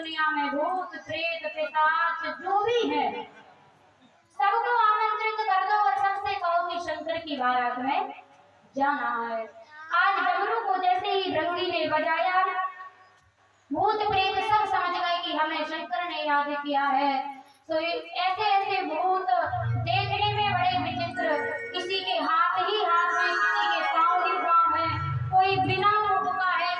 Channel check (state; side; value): identical; both; correlation 1.00